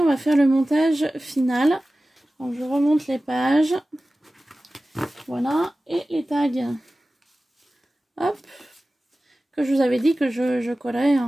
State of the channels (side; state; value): both; normal; correlation 0.96